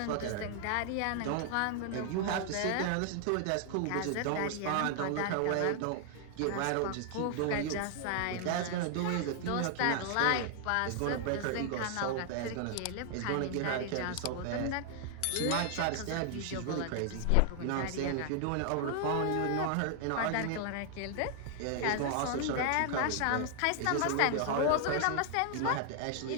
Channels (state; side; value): different; both; correlation 0.00